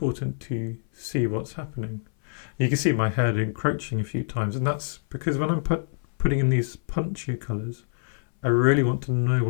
to see what's happening. You can see my head encroaching a few times, and that's because when I'm putting in these punchier colours, I really want to know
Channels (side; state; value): right; silent; 59 dB below the other